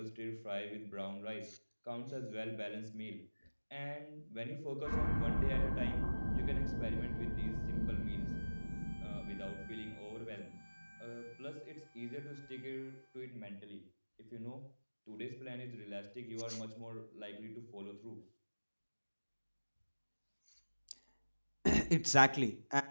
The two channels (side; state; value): both; inverted; correlation -1.00